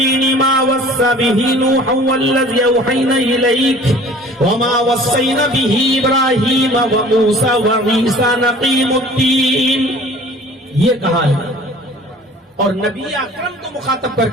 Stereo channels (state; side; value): normal; both; correlation 0.48